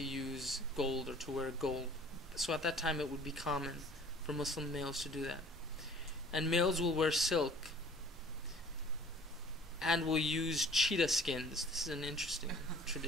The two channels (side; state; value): both; normal; correlation 0.51